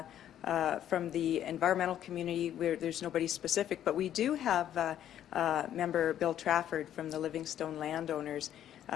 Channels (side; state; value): right; quieter; 10.9 dB